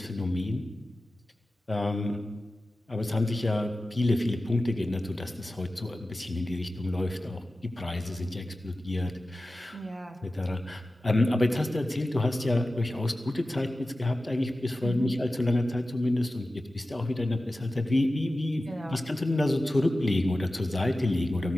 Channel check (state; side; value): normal; both; correlation 0.95